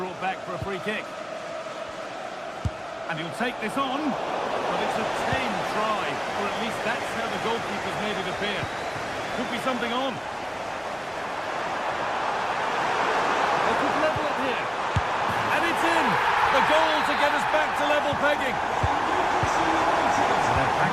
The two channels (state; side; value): identical; both; correlation 1.00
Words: brought back for a free kick. And he'll take this on, but it's a tame try, or at least that's how the goalkeeper's made it appear. Could be something on. They could level it here. And it's in! The goal to get us back to level pegging. And they're